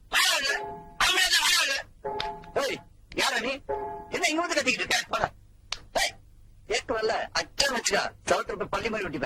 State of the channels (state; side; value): identical; both; correlation 1.00